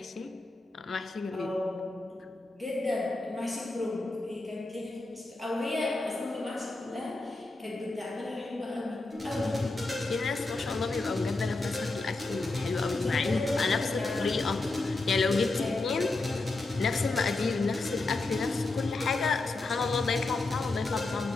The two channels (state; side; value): quieter; right; 3.2 dB